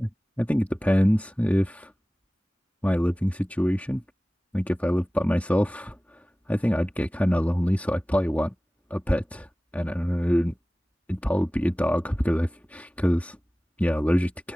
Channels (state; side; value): normal; both; correlation 0.98